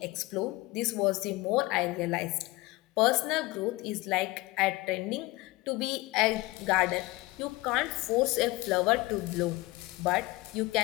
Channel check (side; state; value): right; quieter; 21.3 dB